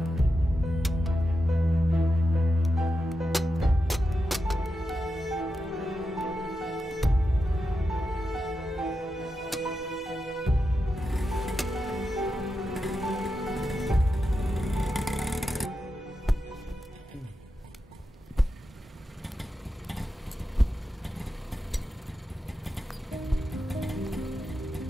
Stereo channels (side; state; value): both; normal; correlation 0.89